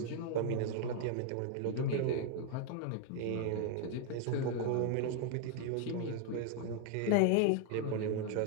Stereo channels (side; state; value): both; different; correlation 0.00